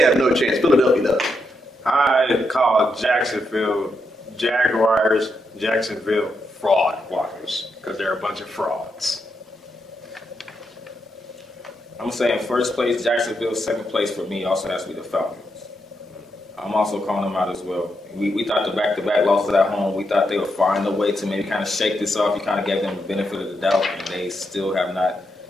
have no chance. Philadelphia does. I call Jacksonville Jaguars, Jacksonville fraud walkers, because they're a bunch of frauds. I'm saying first place, Jacksonville. Second place for me also has to be the Falcons. I'm also calling them out as well. We thought the back-to-back losses at home, we thought they would find a way to maybe kind of shake this off. You kind of gave them the benefit of the doubt, and they still have not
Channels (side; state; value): both; normal; correlation 0.82